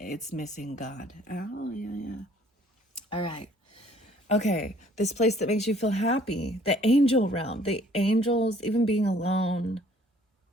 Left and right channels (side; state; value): both; normal; correlation 0.58